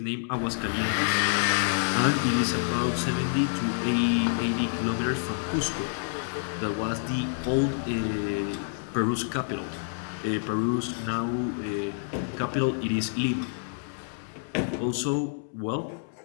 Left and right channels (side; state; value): right; silent; digital silence